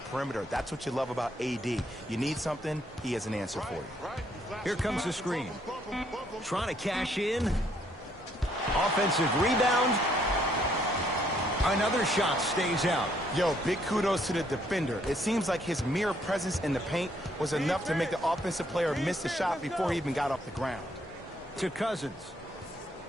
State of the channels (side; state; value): both; normal; correlation 0.69